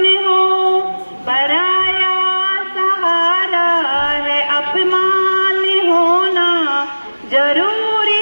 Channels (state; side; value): inverted; both; correlation -1.00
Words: हो। पराया सहारा है अपमान होना,